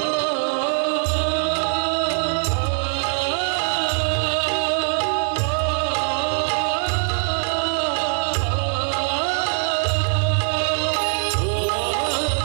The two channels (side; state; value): left; silent; digital silence